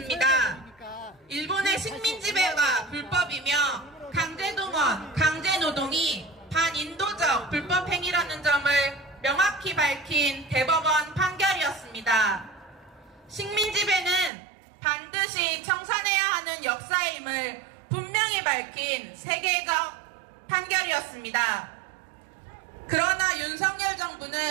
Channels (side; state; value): left; drops out; at 14.3 s